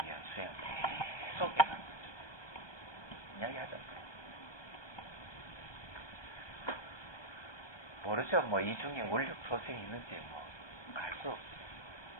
위한 수행을 계속 해가는 거죠. 이야기하잖아요. 모르죠. 뭐 이 중에 원력 소생이 있는지 뭐 알 수 없어요.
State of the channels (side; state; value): right; late; 1.2 ms